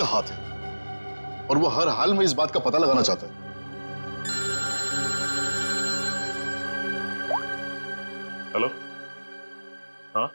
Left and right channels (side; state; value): both; inverted; correlation -1.00